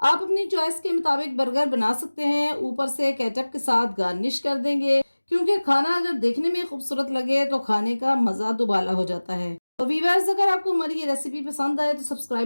अपनी चॉइस के मुताबिक बर्गर बना सकते हैं। ऊपर से केचप के साथ गार्निश कर देंगे क्योंकि खाना अगर देखने में खूबसूरत लगे तो खाने का मज़ा दुबाला हो जाता है। तो वीवर्स, अगर आपको हमारी ये रेसिपी पसंद आए तो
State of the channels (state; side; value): inverted; both; correlation -1.00